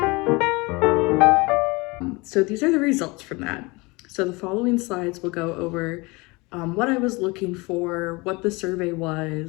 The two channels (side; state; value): right; quieter; 25.4 dB